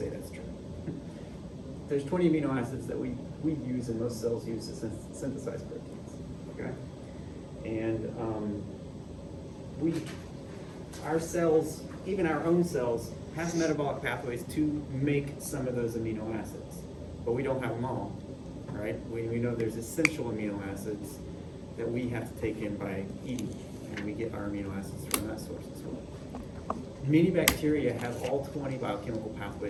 that's true. There's 20 amino acids that we use and most cells use to synthesize proteins. Okay, and our cells, even our own cells, have metabolic pathways to make some of those amino acids, but we don't have them all. Right? We know there's essential amino acids that we have to take in by eating, and we get our amino acids from that source as well. Many bacteria have all 20 biochemical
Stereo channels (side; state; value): both; identical; correlation 1.00